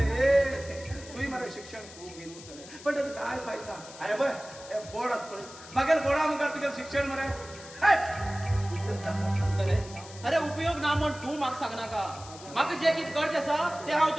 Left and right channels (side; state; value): left; noise; hiss, 17 dB below the sound